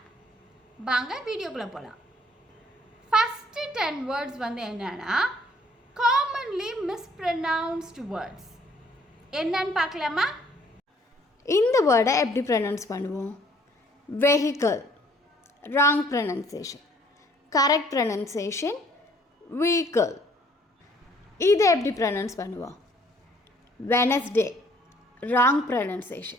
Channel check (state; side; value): normal; both; correlation 0.60